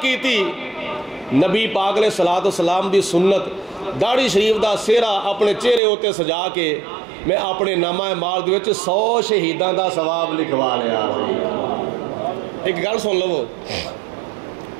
کیتی. نبی پاک علیہ الصلوۃ والسلام دی سنت داڑھی شریف دا سہرا اپنے چہرے ہوتے سجا کے میں اپنے نامہ اعمال دے وچ 100 شہیداں دا ثواب لکھوا لیا. ایک گل سن لو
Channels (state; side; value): drops out; left; at 5.8 s